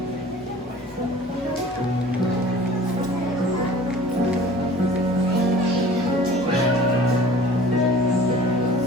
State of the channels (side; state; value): both; normal; correlation 0.46